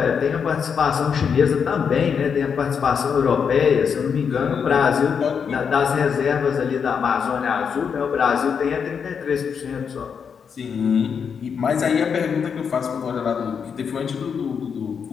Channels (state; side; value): quieter; right; 6.7 dB